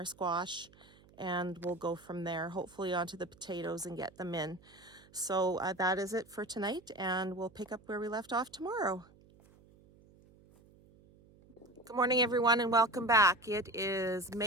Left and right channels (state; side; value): noise; right; hum, 27 dB below the sound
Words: squash, and we'll go from there, hopefully onto the potatoes and get them in. So that is it for tonight, and we'll pick up where we left off tomorrow. Good morning, everyone, and welcome back. It is